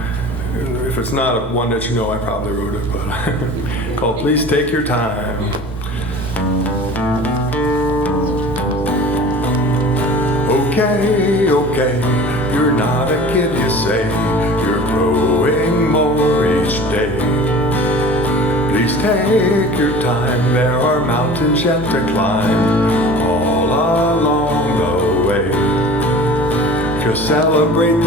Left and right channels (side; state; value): both; normal; correlation 0.40